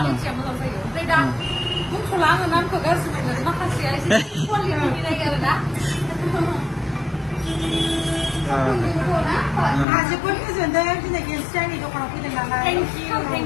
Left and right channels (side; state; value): right; drops out; at 9.9 s